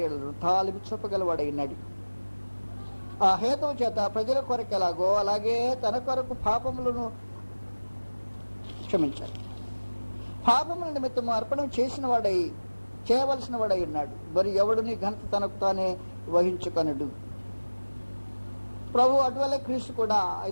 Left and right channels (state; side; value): inverted; both; correlation -1.00